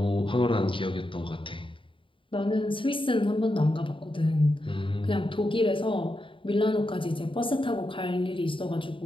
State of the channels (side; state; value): right; late; 0.25 ms